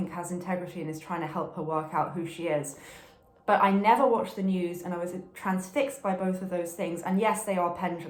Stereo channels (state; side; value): identical; both; correlation 1.00